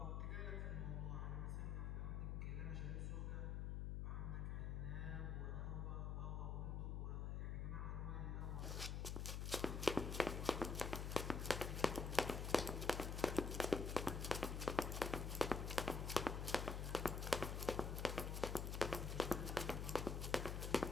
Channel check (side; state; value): left; noise; hum, 1 dB below the sound